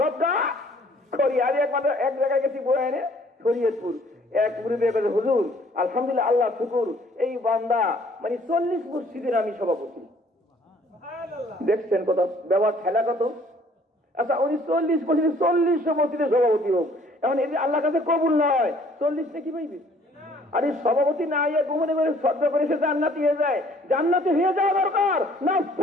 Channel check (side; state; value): both; normal; correlation 0.58